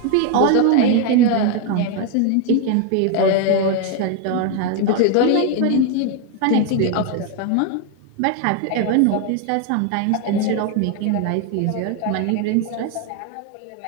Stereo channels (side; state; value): both; different; correlation 0.01